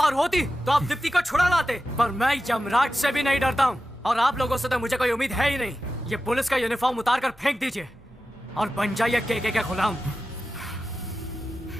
होती तो आप दीप्ति को छुड़ा लाते, पर मैं यमराज से भी नहीं डरता हूँ और आप लोगों से तो मुझे कोई उम्मीद है ही नहीं। ये पुलिस का यूनिफॉर्म उतार कर फेंक दीजिए और बन जाइए केके के गुलाम।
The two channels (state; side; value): normal; both; correlation 0.93